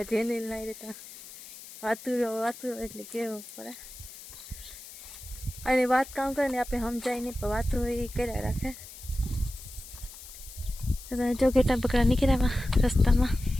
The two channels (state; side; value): noise; left; hiss, 15 dB below the sound